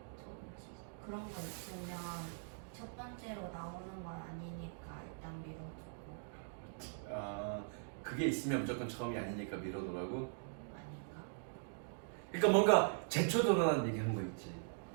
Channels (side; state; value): left; silent; digital silence